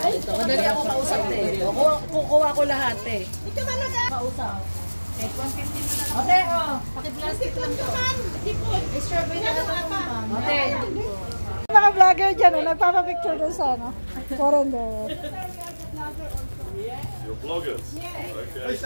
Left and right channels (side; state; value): both; inverted; correlation -1.00